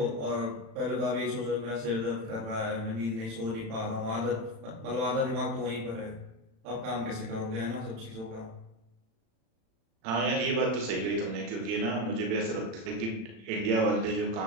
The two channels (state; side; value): late; left; 36 ms